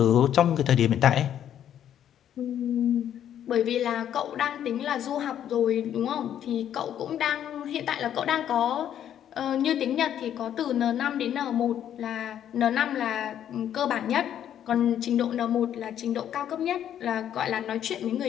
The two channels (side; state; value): right; quieter; 10.2 dB